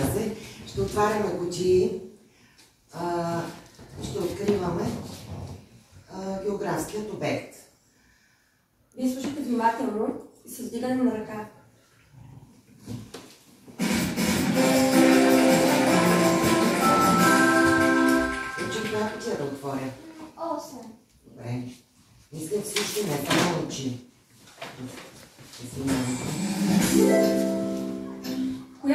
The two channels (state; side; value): identical; both; correlation 1.00